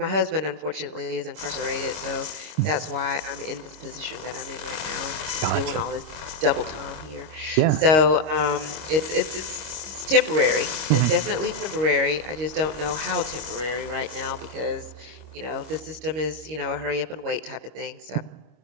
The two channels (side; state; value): left; late; 26 ms